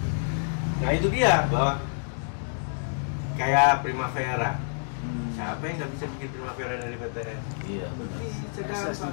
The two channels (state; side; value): silent; right; digital silence